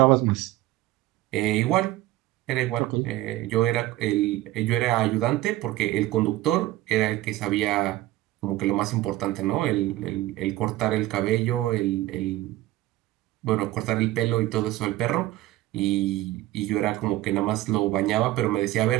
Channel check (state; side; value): quieter; left; 16.2 dB